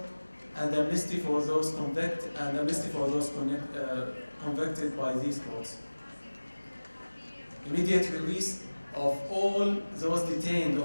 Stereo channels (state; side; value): inverted; both; correlation -1.00